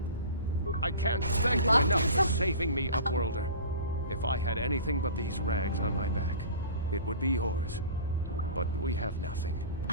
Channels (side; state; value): both; inverted; correlation -0.39